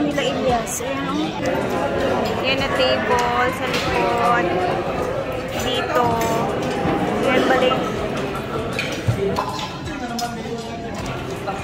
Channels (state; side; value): identical; both; correlation 1.00